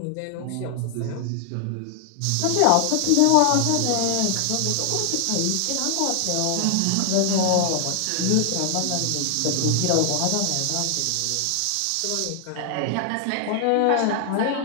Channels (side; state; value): both; different; correlation 0.00